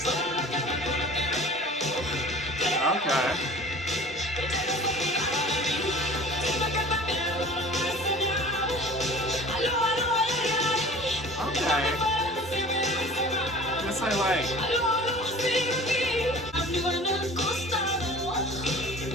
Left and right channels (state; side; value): normal; both; correlation 0.43